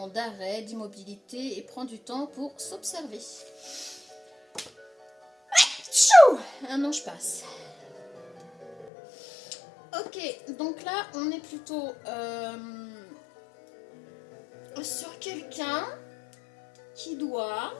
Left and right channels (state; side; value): drops out; right; at 8.9 s